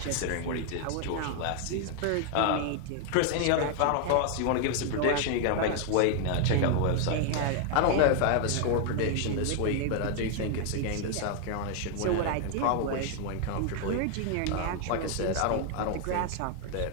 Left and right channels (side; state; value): both; different; correlation 0.00